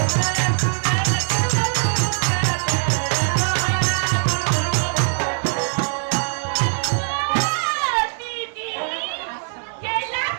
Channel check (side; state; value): left; silent; 65 dB below the other